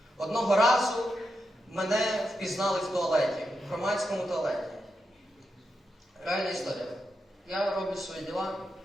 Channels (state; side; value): normal; both; correlation 0.86